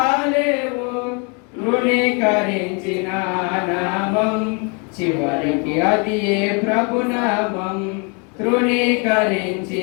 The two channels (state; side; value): quieter; right; 34.5 dB